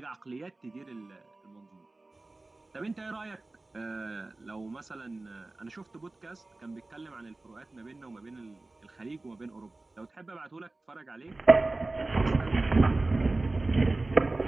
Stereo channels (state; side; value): quieter; left; 3.1 dB